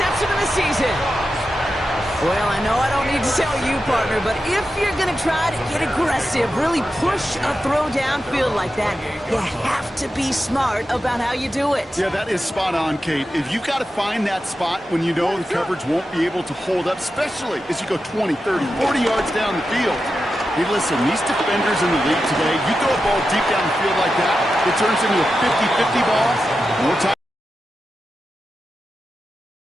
of the season. Well, I know I don't need to tell you, partner, but if you're going to try to get aggressive, really push a throw downfield like that, you have to be smart about how you do it. Yeah, that is spot on, Kate. If you've got to find that spot when you know the coverage won't be able to hold up, especially as you go 20, 30, 40 yards down the field. Hey, listen, these defenders in the league today, you throw a ball deep down the field like that, it turns into a 50-50 ball. More time.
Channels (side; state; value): both; normal; correlation 0.90